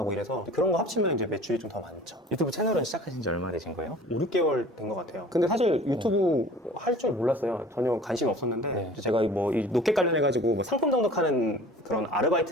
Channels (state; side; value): normal; both; correlation 0.45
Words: 이래서 그런 거 합치면 이제 매출이 좀 더 많죠. 유튜브 채널은 시작하신 지 얼마 되신 거예요? 5, 6개월 된 것 같아요. 근데 사실 유튜브 할 줄 몰랐어요. 전혀 관심 없었는데 네. 제가 뭐 이 로켓 관련해가지고 뭐 상품 등록하는 그런